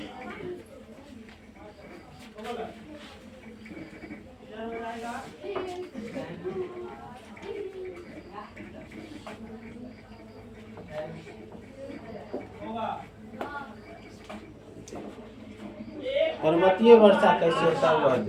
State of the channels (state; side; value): identical; both; correlation 1.00